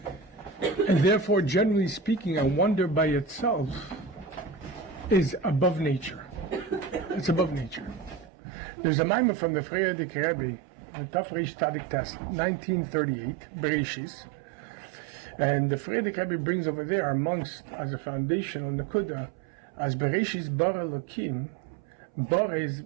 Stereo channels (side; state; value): left; drops out; at 8.3 s